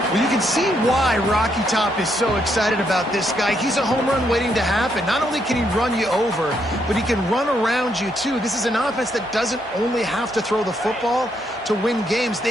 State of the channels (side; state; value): both; normal; correlation 0.76